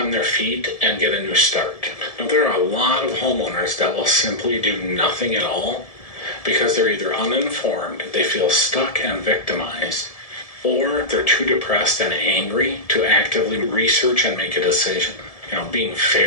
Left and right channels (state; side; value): late; right; 1.7 ms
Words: their feet and get a new start. Now, there are a lot of homeowners that will simply do nothing at all because they're either uninformed, they feel stuck and victimized, or they're too depressed and angry to actively research and make a decision. Being